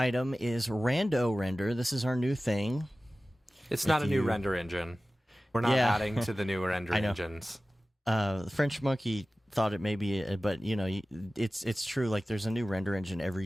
is Rando Render. This is our new thing. It's not a new render engine. We're not adding to the new render engines. The French Monkey thought it may be, but it's true. Like, there's a new render engine every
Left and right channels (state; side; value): normal; both; correlation 0.96